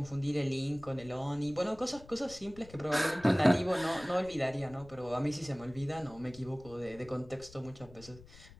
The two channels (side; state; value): left; noise; rumble, 20 dB below the sound